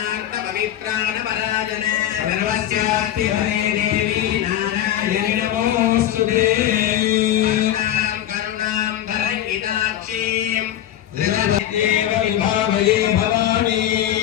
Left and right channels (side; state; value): right; quieter; 11.8 dB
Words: பவித்ராண பராஜன சர்வஸ்யாஸ்தி ஹரே தேவி நாராயணி நமோஸ்துதே கருணாம் தரங்கிதாட்சீம் தேவ விபாவயே பவானி